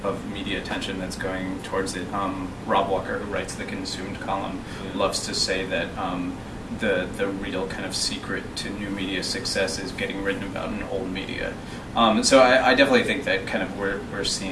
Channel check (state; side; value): identical; both; correlation 1.00